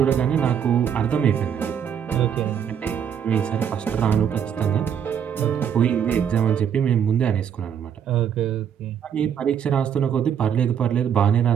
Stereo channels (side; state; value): left; quieter; 8.3 dB